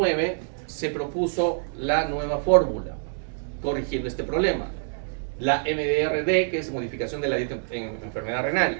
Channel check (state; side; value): silent; left; digital silence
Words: se propuso la nueva fórmula, corrigiendo este problema. La MDRD, que es modificación de la dieta en enfermedad renal.